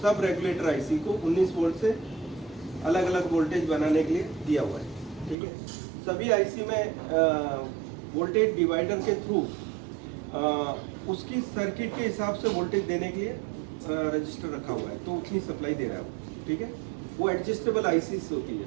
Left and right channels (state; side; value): drops out; left; at 5.4 s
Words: सब रेगुलेटर आईसी को 19 वोल्ट से अलग अलग वोल्टेज बनाने के लिए दिया हुआ है, ठीक है। सभी आईसी में वोल्टेज डिवाइडर के थ्रू उसकी सर्किट के हिसाब से वोल्टेज देने के लिए रजिस्टर रखा हुआ है, तो उतनी सप्लाई दे रहा है वो, ठीक है। वो एडजस्टेबल आईसीस होती है